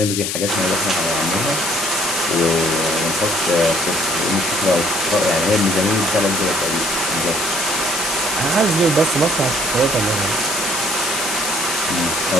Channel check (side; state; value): left; noise; hiss, 2 dB below the sound